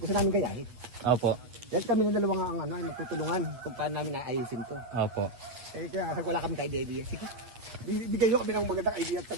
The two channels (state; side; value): late; left; 8.8 ms